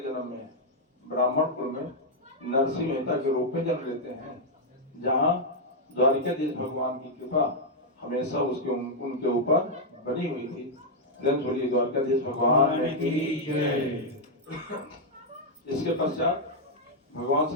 जन्म में ब्राह्मण कुल में नरसिंह मेहता के रूप में जन्म लेते हैं, जहाँ द्वारिकाधीश भगवान की कृपा हमेशा उनके ऊपर बनी हुई थी। बोलिए द्वारकाधीश भगवान की जय। इसके पश्चात भगवान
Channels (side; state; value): both; normal; correlation -0.03